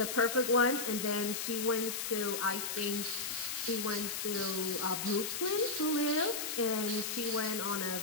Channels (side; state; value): left; noise; hiss, 3 dB below the sound